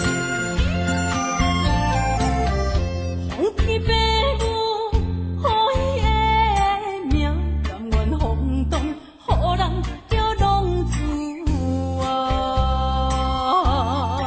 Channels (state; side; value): identical; both; correlation 1.00